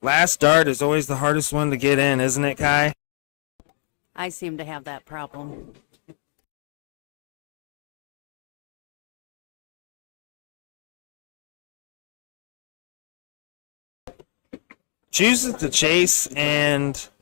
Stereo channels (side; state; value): right; silent; digital silence